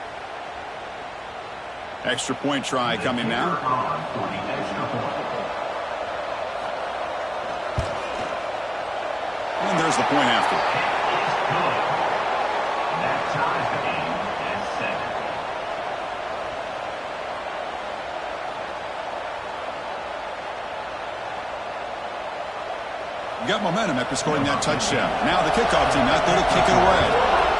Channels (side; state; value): both; identical; correlation 1.00